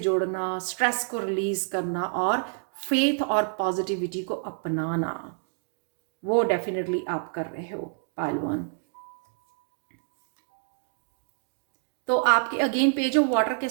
स्ट्रेस को रिलीज करना और फेथ और पॉजिटिविटी को अपनाना, वो डेफिनेटली आप कर रहे हो पाइल 1। तो आपके अगेन पेज ऑफ वाटर के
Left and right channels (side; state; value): left; silent; digital silence